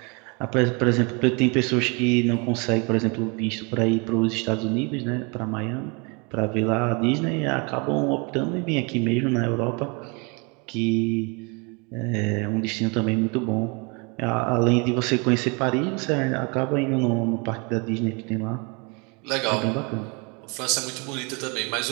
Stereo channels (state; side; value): quieter; left; 31.3 dB